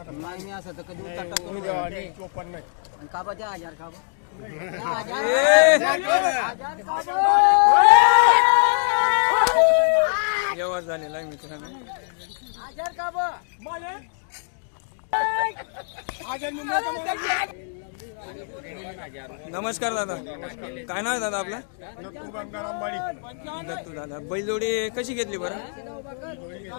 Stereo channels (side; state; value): right; silent; 63 dB below the other